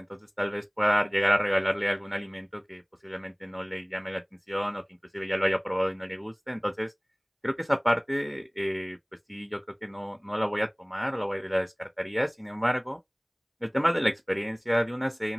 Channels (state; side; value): identical; both; correlation 1.00